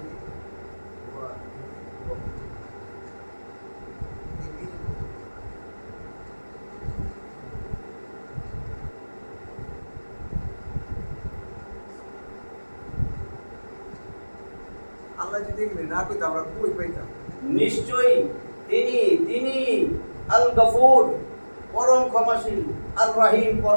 আল্লাহ যদি এগুলি না কইতো আমরা কই পাইতাম? নিশ্চয়ই তিনি তিনি আল গফুর পরম ক্ষমাশীল, আর রহিম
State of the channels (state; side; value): inverted; both; correlation -1.00